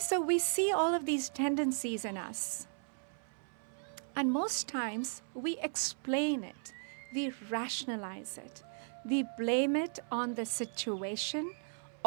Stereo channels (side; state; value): left; silent; 54 dB below the other